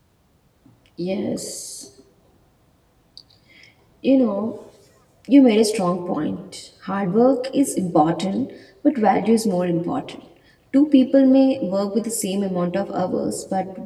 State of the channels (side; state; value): both; identical; correlation 1.00